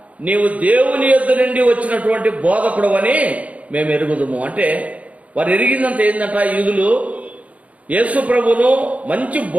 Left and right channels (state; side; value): late; left; 0.067 ms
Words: నీవు దేవుని యొద్ద నుండి వచ్చినటువంటి బోధకుడు అని మేము ఎరుగుదుము. అంటే వారు ఎరిగిందంత ఏంటంట? యూదులు యేసు ప్రభును మంచి